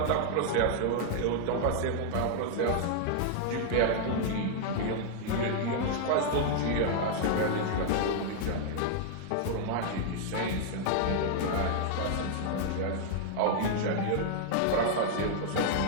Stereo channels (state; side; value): different; both; correlation 0.00